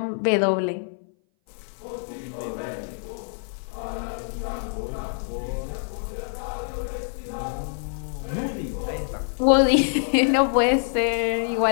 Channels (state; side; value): silent; right; 58 dB below the other